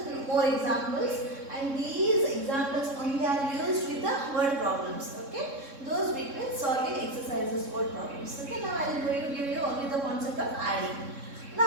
more examples, and these examples only are used with the word problems. Okay, those between solving exercises, word problems. Okay, now I am going to give you only the concept of adding.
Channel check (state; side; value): late; left; 3.6 ms